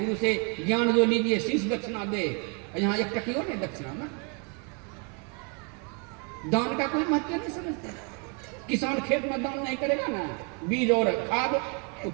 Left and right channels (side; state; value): left; quieter; 35.5 dB